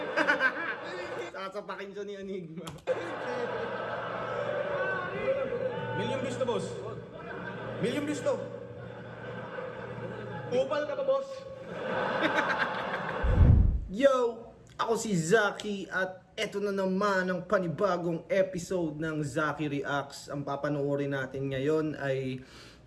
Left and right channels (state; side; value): identical; both; correlation 1.00